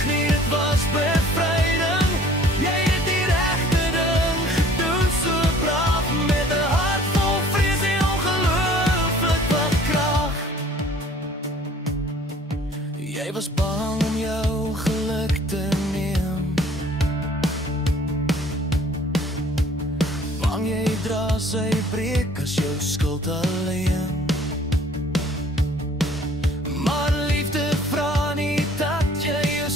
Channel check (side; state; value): both; normal; correlation 0.53